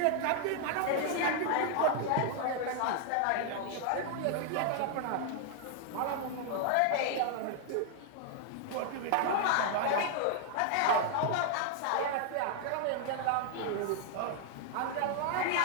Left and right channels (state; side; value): different; both; correlation 0.00